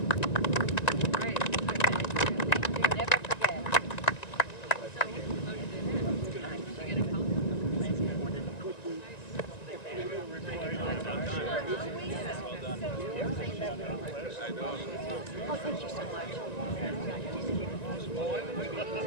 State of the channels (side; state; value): right; late; 1.9 ms